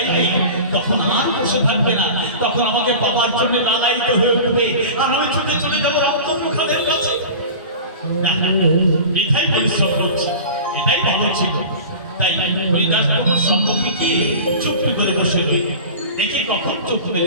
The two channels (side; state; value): both; inverted; correlation -0.36